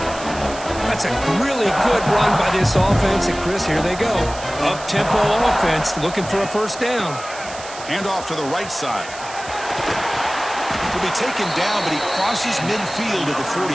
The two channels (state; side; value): noise; right; hiss, 14 dB below the sound